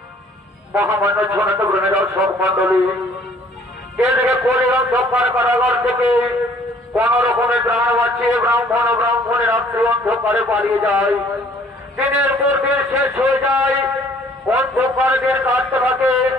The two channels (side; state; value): both; normal; correlation 0.57